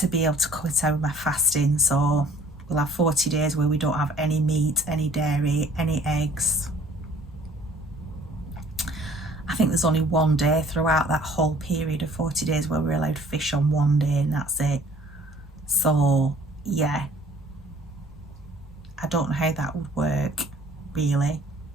be able to cut out my fasting. So we'll have 40 days where we don't have any meat, any dairy, any eggs. I think there's only one day throughout that whole period of 40 days where we're allowed fish on one day, and that's it. So yeah, I don't know how that would work really.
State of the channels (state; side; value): normal; both; correlation 0.55